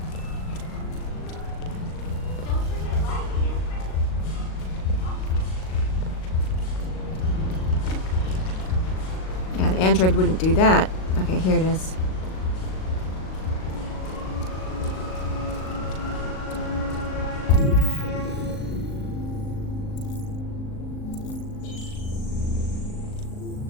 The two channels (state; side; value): late; right; 38 ms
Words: Yeah, an android wouldn't do that. Okay, here it is.